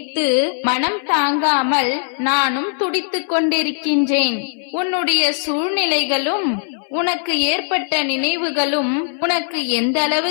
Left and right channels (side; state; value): right; silent; 62 dB below the other